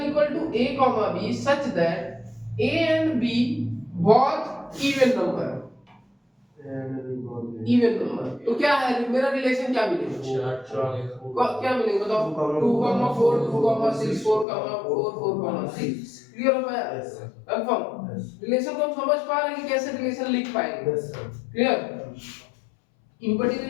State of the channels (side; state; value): right; drops out; at 14.5 s